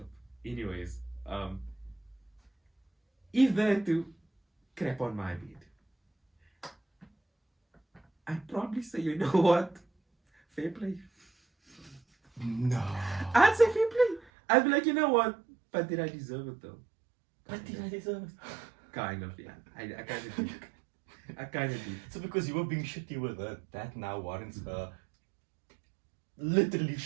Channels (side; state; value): left; drops out; at 14.2 s